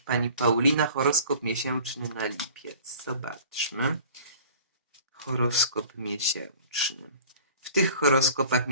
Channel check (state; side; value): inverted; both; correlation -0.46